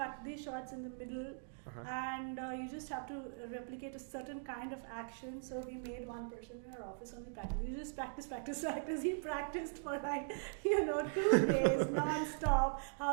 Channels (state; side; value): silent; left; digital silence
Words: these shots in the middle and you just have to replicate a certain kind of action. So we made one person in our office only practice. You just practice. He practiced for 2 days non-stop